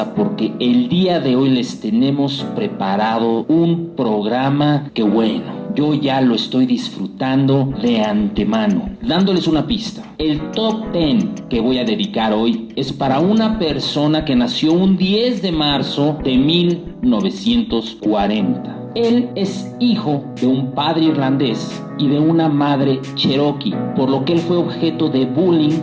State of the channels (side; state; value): both; identical; correlation 1.00